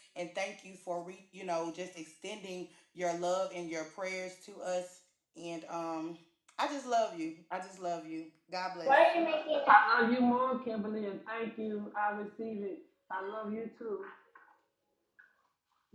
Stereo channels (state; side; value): identical; both; correlation 1.00